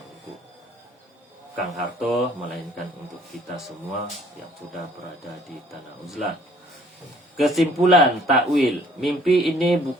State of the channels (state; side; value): normal; both; correlation 0.58